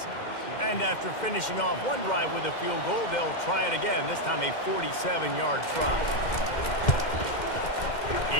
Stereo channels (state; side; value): late; right; 2.1 ms